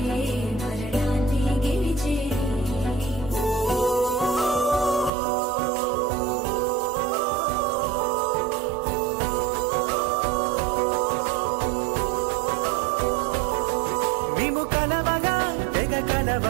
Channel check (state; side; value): drops out; left; at 5.1 s